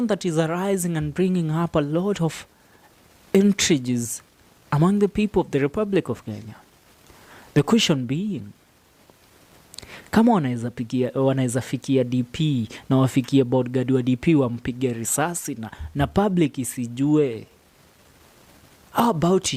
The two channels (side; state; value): both; identical; correlation 1.00